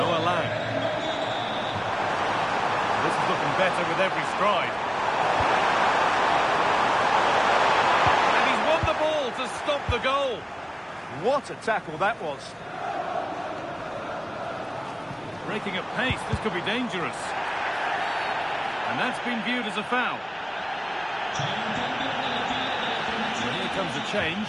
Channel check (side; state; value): both; identical; correlation 1.00